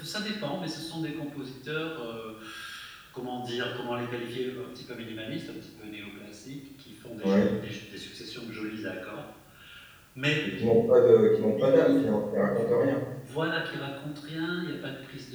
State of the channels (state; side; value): identical; both; correlation 1.00